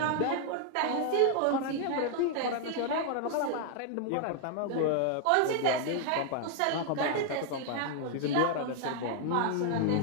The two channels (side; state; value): both; different; correlation 0.00